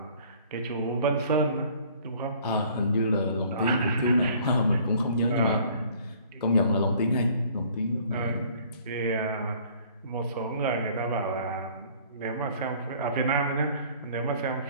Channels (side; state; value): both; inverted; correlation -0.55